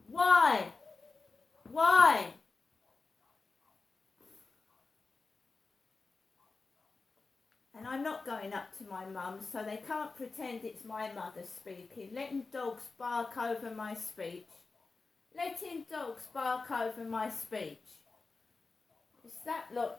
Why? Why? And I'm not going up to my mum, so they can't pretend it's my mother speaking. Letting dogs bark over my speech. Letting dogs bark over my speech. It's that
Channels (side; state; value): right; quieter; 4.0 dB